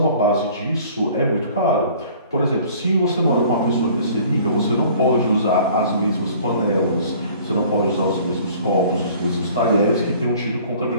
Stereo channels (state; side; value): inverted; both; correlation -0.51